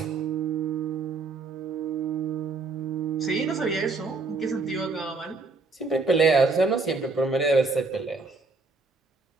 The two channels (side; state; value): left; quieter; 3.9 dB